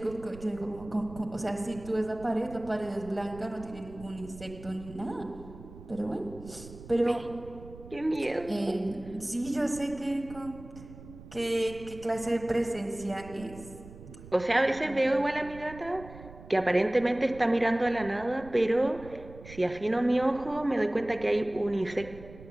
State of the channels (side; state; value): right; noise; rumble, 17 dB below the sound